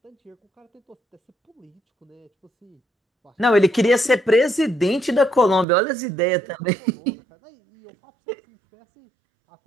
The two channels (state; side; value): drops out; left; at 5.7 s